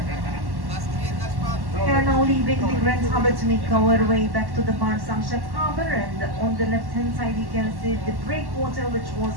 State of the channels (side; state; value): left; late; 1.1 ms